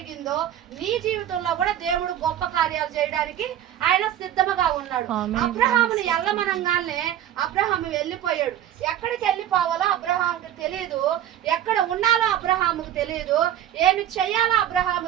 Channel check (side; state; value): left; quieter; 11.3 dB